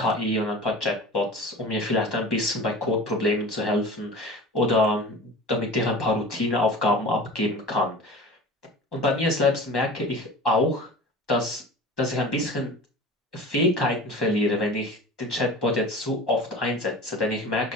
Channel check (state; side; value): normal; both; correlation 0.37